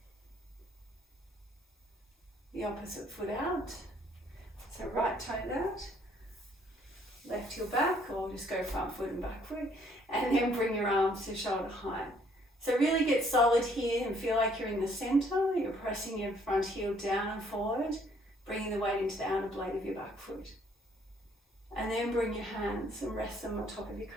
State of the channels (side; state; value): both; normal; correlation 0.64